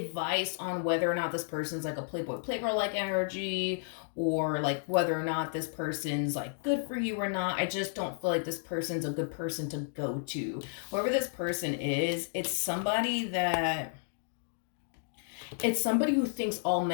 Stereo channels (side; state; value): right; silent; digital silence